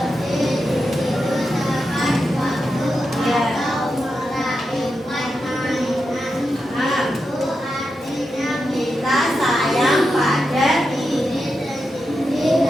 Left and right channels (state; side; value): normal; both; correlation 0.88